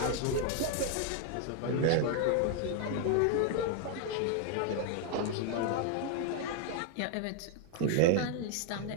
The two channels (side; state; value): both; different; correlation 0.00